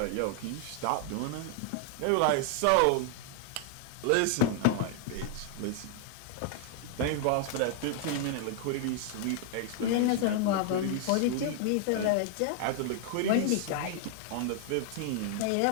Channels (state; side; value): different; both; correlation 0.00